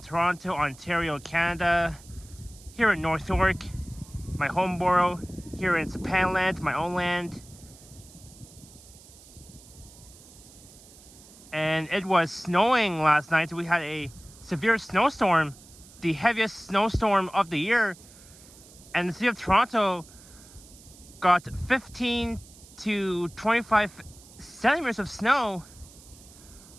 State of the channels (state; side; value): noise; right; hiss, 22 dB below the sound